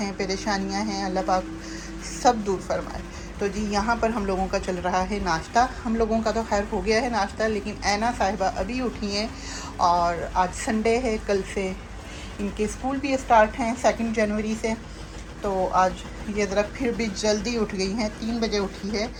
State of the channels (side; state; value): both; identical; correlation 1.00